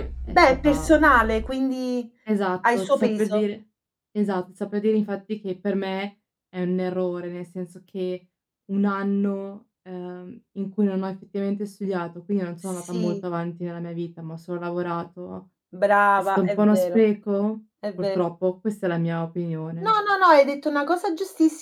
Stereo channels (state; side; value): identical; both; correlation 1.00